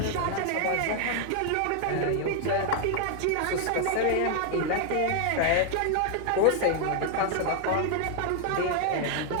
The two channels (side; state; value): both; different; correlation 0.00